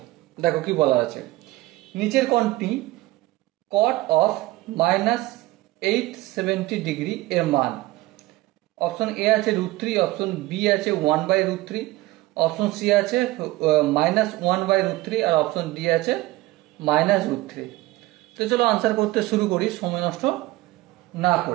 দেখো কি বলা আছে। নিচের কোণটি কট অফ -870 এর মান। অপশন এ আছে √3, অপশন বি আছে 1/√3, অপশন সি আছে -1/√3 আর অপশন ডি আছে -√3। তো চলো আনসার করতে শুরু করি সময় নষ্ট না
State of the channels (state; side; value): quieter; left; 18.6 dB